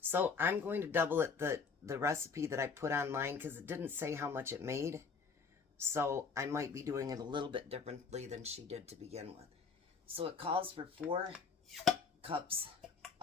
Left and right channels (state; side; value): quieter; right; 5.3 dB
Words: So I'm going to double it, the recipe that I put online, because it didn't say how much it made. So I might be doing it a little bit differently than she did to begin with. So it calls for 4 cups